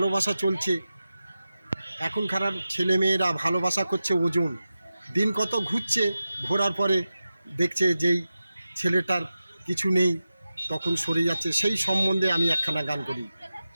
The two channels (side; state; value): both; inverted; correlation -0.93